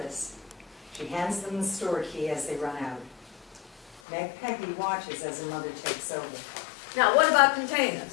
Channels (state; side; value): drops out; right; at 4.0 s